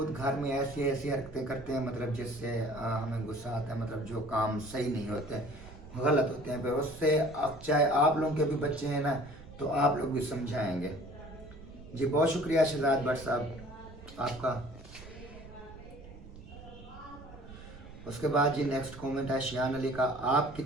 घर में ऐसी ऐसी हरकतें करते हैं, मतलब जिससे हमें गुस्सा आता है। मतलब जो काम सही नहीं होते, गलत होते हैं, फिर उससे अब चाहे आप लोगों के भी बच्चे हैं ना, तो आप लोग भी समझाएंगे जी। बहुत शुक्रिया शहजाद भट्ट साहब आपका। उसके बाद जी नेक्स्ट कमेंट है शियान अली का। आप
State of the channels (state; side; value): noise; right; rumble, 16 dB below the sound